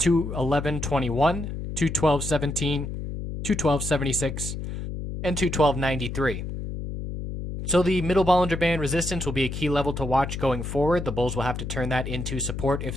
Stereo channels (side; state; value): left; noise; hum, 6 dB below the sound